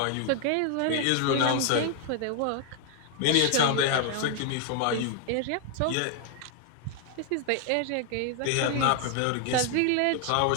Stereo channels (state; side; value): different; both; correlation 0.00